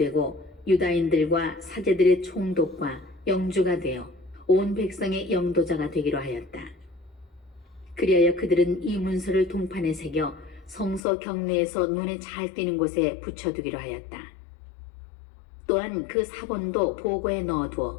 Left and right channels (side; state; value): right; drops out; at 11.0 s